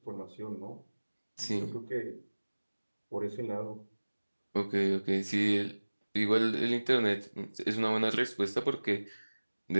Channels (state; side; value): inverted; both; correlation -1.00